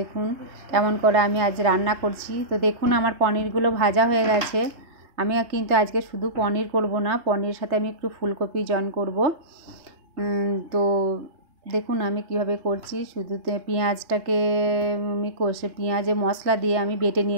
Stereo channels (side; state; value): left; late; 3.3 ms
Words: কেমন করে আমি আজ রান্না করছি। তো দেখুন আমার পনিরগুলো ভাজা হয়ে গেছে। আমি কিন্তু আজকে শুধু পনির করব না, পনিরের সাথে আমি একটু ফুলকপি জয়েন করব। তো দেখুন আমি কিভাবে করছি। শুধু পেঁয়াজটাকে আমি পেঁয়াজে মশলা দিয়ে আমি বেটে